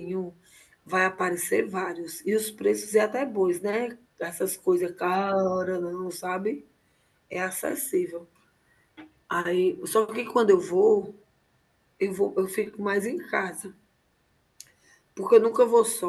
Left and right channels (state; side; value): identical; both; correlation 1.00